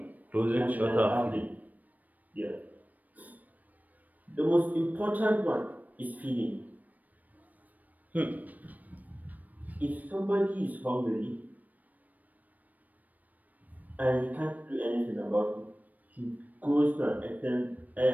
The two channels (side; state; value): left; late; 0.079 ms